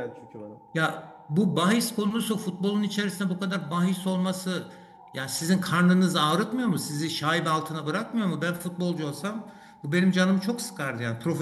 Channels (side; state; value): both; identical; correlation 1.00